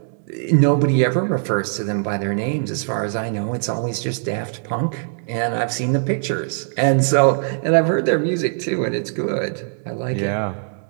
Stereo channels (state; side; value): silent; left; digital silence